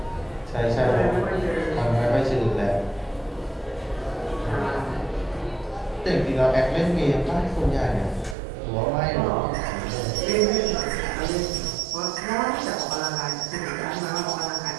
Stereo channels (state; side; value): drops out; left; at 8.3 s